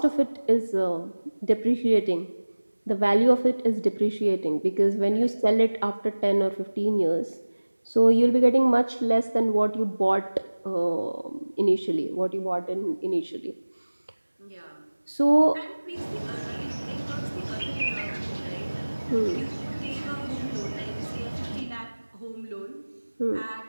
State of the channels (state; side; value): inverted; both; correlation -1.00